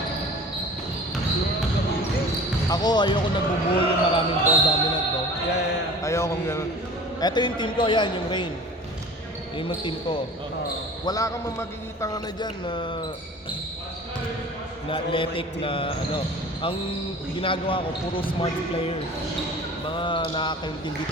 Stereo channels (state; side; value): normal; both; correlation 0.42